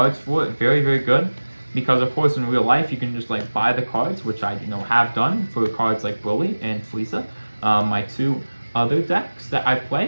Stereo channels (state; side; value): inverted; both; correlation -1.00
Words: for it. Very, very good. Because of course in real life you can just like buy the cards, which I have done for cards like Broly and Frieza, my two other decks that I